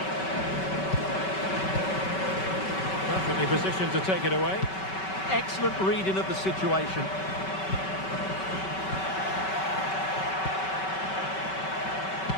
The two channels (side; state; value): right; late; 5.3 ms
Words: Perfectly positioned to take it away. Excellent reading of the situation.